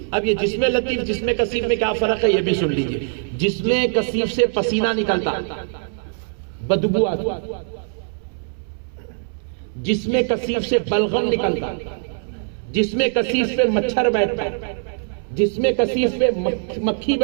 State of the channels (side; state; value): left; silent; 64 dB below the other